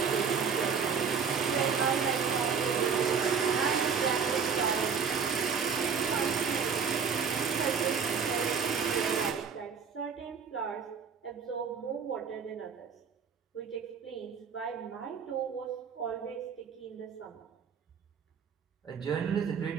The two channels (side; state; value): left; quieter; 6.3 dB